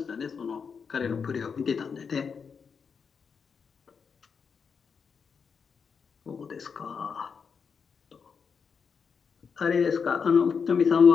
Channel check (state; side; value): quieter; right; 6.0 dB